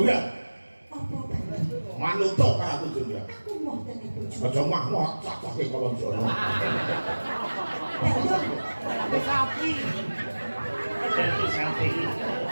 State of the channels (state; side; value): inverted; both; correlation -1.00